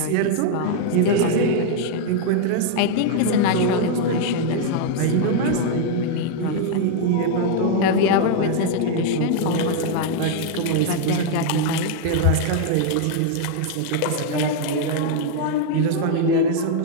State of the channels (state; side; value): different; both; correlation 0.00